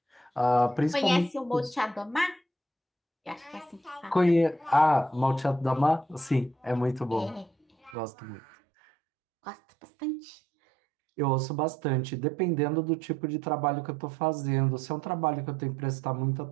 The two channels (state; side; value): drops out; left; at 8.0 s